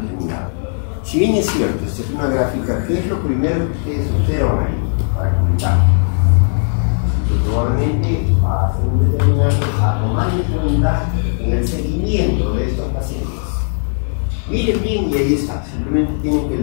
Si bien es cierto, esta es una gráfica, ¿qué es lo primero que ustedes observan ahí para comentar? Que probablemente va a ser un determinante a tomar en cuenta en el seguimiento de estos pacientes. Miren bien y ahí está, simplemente tienen que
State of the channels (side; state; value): right; silent; 60 dB below the other